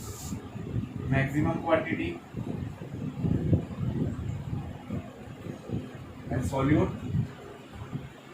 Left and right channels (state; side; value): identical; both; correlation 1.00